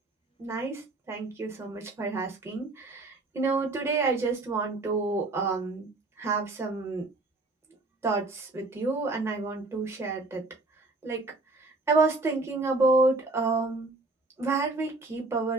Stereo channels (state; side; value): quieter; left; 3.1 dB